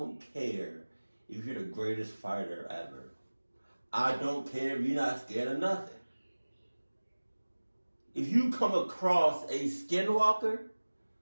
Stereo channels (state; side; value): inverted; both; correlation -1.00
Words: care if you're the greatest fighter ever. I don't care if you're not scared of nothing. If you come across a skinwalker,